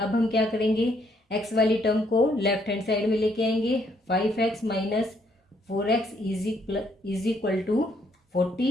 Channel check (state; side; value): normal; both; correlation 0.70